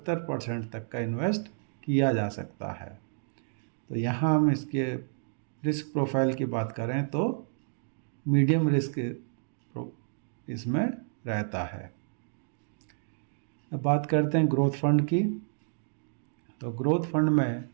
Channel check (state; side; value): silent; left; digital silence